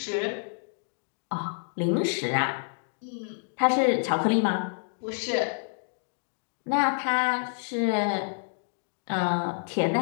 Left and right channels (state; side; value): silent; right; digital silence